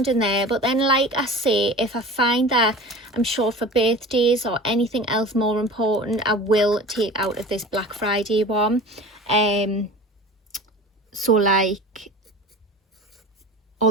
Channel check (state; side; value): normal; both; correlation 0.37